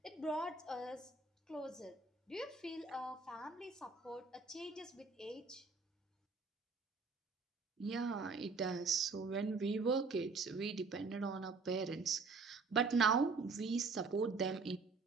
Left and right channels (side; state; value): left; quieter; 4.2 dB